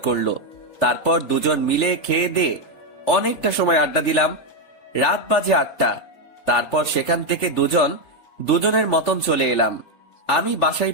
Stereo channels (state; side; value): late; right; 3.4 ms